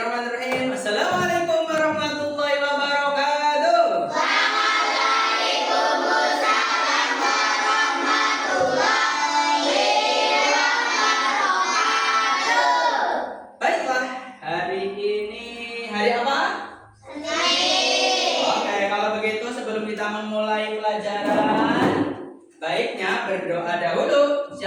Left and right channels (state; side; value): identical; both; correlation 1.00